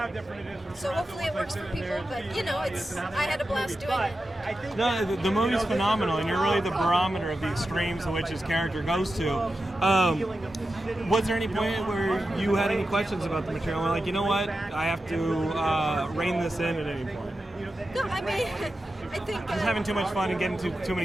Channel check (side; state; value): both; normal; correlation 0.91